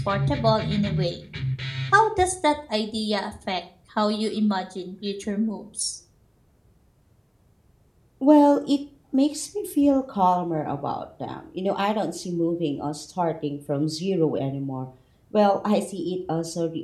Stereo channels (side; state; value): both; identical; correlation 1.00